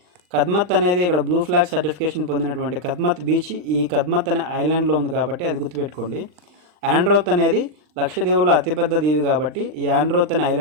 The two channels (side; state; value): left; late; 39 ms